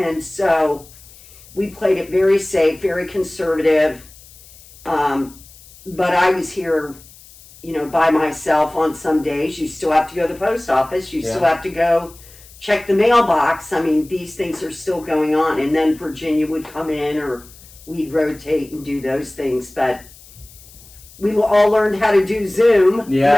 so we played it very safe, very conservative. But I was here, by myself on some days. You still have to go to the post office. You still have to go check the mailbox. I mean, these things are still going on. And then Virginia would come in, or we'd rotate and do those things. But we all learned how to do Zoom.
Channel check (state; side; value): noise; left; hiss, 22 dB below the sound